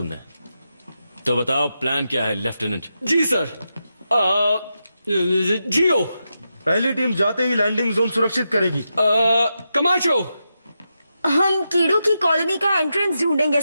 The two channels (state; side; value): inverted; both; correlation -0.87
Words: तो बताओ प्लान क्या है लेफ्टिनेंट? जी सर। जियो। पहली टीम जाते ही लैंडिंग जोन सुरक्षित करेगी। कमाचो। हम कीड़ों की कॉलोनी का एंट्रेंस ढूंढेंगे